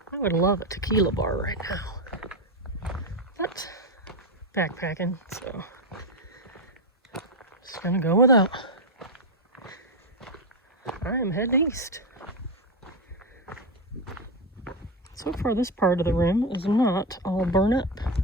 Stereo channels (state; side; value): normal; both; correlation 0.11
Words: I would love a tequila bar right now. But backpacking, so just gonna go without. I am heading east. So far this part of the rim is not all burnt up,